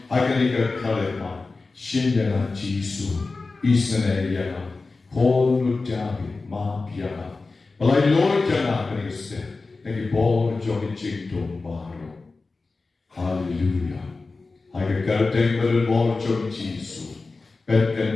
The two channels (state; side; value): quieter; right; 3.8 dB